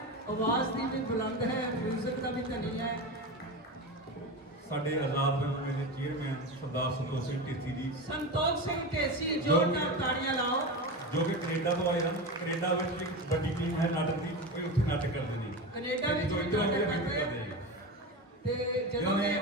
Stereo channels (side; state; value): both; normal; correlation 0.22